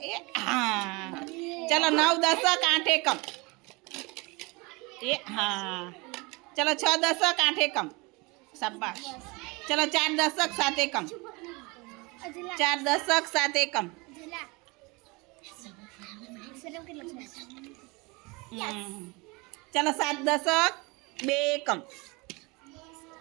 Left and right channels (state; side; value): quieter; left; 26.4 dB